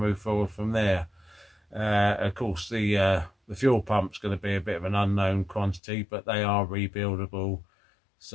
forward from there. Of course, the fuel pump's going to be a bit of an unknown quantity, but they are rebuildable,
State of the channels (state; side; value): drops out; right; at 5.8 s